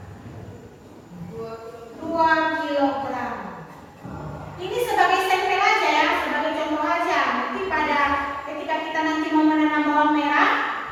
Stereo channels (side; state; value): both; identical; correlation 1.00